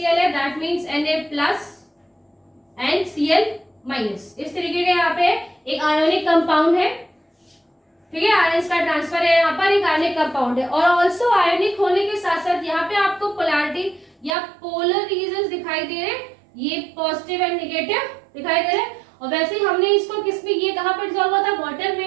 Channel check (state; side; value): drops out; left; at 14.4 s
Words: है, that means Na+ and Cl-। इस तरीके के यहाँ पे एक आयोनिक कंपाउंड है, ठीक है, आयंस का ट्रांसफर है, यहाँ पर एक आयनिक कंपाउंड है। और ऑल्सो आयनिक होने के साथ साथ यहाँ पे आपको पोलैरिटी या पोलर रीजन दिखाई दे रहे हैं, ये पॉजिटिव एंड नेगेटिव दिखाई दे रहे हैं। और वैसे ही हमने इसको किसमें, ये कहाँ पर डिसॉल्व हुआ था? वाटर